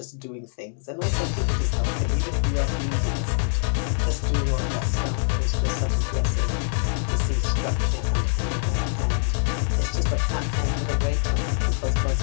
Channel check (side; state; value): right; silent; digital silence